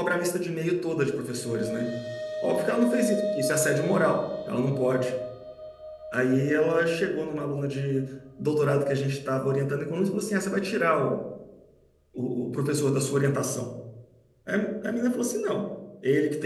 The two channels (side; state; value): both; identical; correlation 1.00